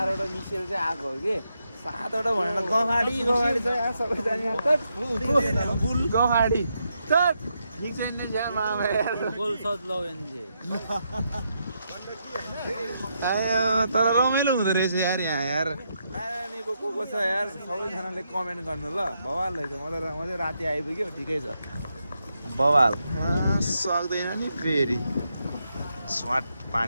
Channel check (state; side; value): inverted; both; correlation -0.81